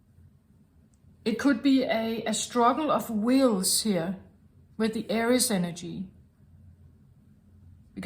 It could be a struggle of wills here with the Aries energy.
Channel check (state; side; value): identical; both; correlation 1.00